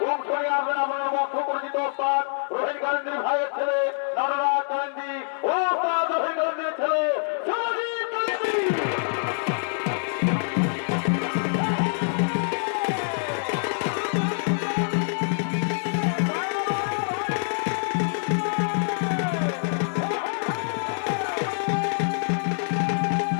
অংশ নিয়ে আসবেন আপনার মধ্য পরিচিত ওস্তাদ রোহিত গান্ধীর ভাইয়ের ছেলে নররাজ গান্ধী, ওস্তাদ রোহিত গান্ধীর ছেলে সমাজিৎ গান্ধী।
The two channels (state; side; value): silent; right; digital silence